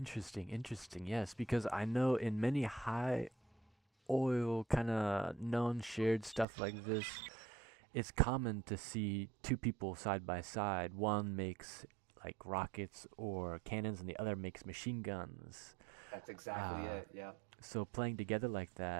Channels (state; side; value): drops out; left; at 6.5 s